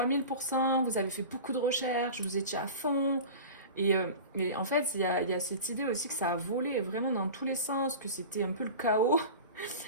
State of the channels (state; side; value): inverted; both; correlation -0.34